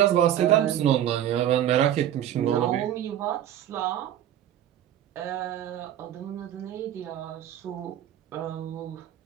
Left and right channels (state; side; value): quieter; left; 11.3 dB